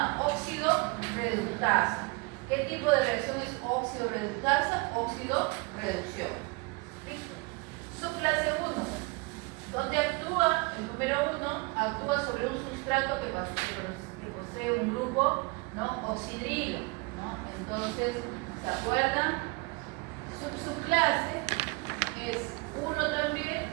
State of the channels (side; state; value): left; quieter; 28.0 dB